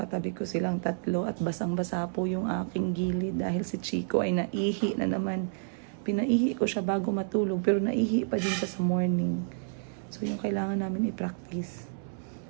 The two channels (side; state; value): left; silent; 58 dB below the other